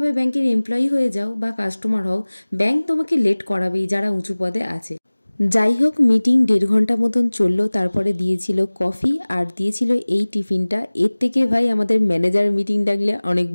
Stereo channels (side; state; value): both; inverted; correlation -1.00